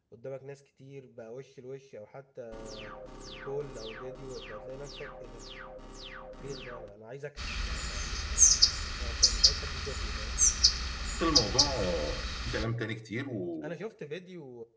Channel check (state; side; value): identical; both; correlation 1.00